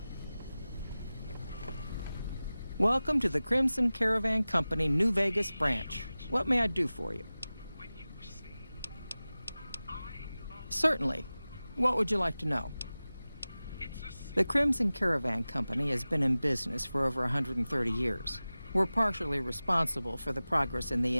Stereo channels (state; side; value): inverted; both; correlation -0.97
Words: Welcome to the Crimson Caravan Company New Vegas branch. What may I do for you? Certainly. What would you like to know? The Crimson Caravan Company has been in business for over 130 years. We're partially responsible for the progress in the